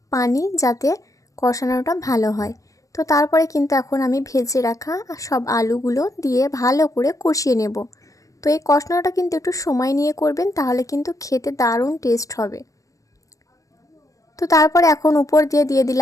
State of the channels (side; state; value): right; late; 0.16 ms